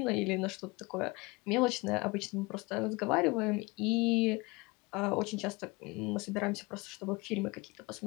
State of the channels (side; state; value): right; quieter; 24.6 dB